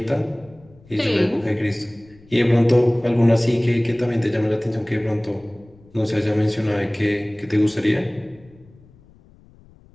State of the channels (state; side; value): noise; left; rumble, 27 dB below the sound